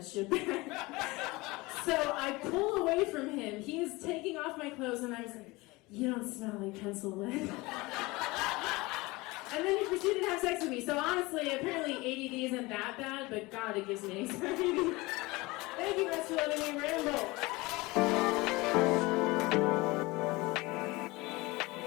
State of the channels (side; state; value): right; quieter; 22.5 dB